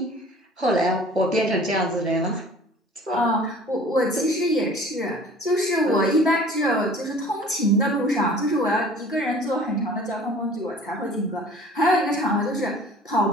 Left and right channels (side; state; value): both; normal; correlation 0.48